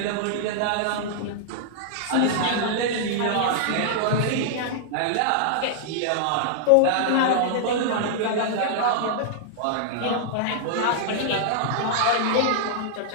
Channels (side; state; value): both; different; correlation -0.01